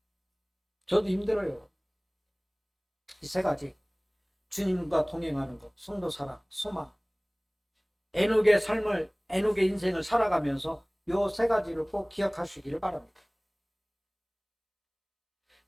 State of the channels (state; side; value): identical; both; correlation 1.00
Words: 저도 힘들어요. 이 세 가지. 주님과 동행하는 것, 성도 사랑, 소망. 애녹의 삶을, 애녹의 인생을 살아가면서 요 세 가지를 꼭 기억하시기를 바랍니다.